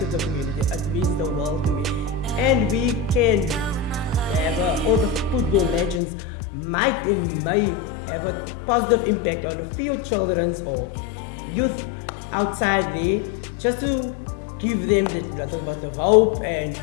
the community, it means the world to me. And we can have all the football legends may have a positive impact on the field children or youth outside there, just to give them that little bit of hope, and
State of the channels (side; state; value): right; drops out; at 6.0 s